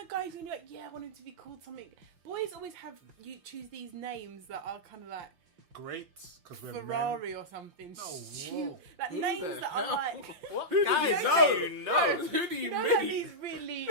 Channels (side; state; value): left; late; 5.7 ms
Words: a guy who's gonna be like, I want him to be called something. Boys always have you choose these names that are kind of like great, because we're Ferrari or something. Oh, Stu- whoa. like Who names the that hell? are like. What? Who do Guys, you know? you know? Who do you You know, mean? like these really